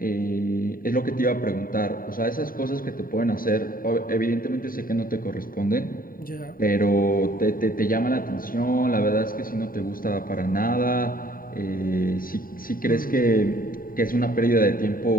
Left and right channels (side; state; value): right; late; 0.41 ms